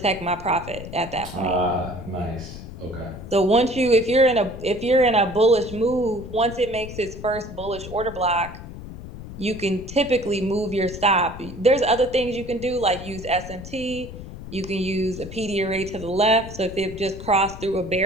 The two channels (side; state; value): left; noise; rumble, 12 dB below the sound